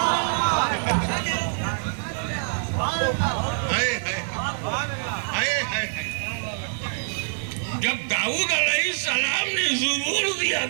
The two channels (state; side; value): silent; left; 62 dB below the other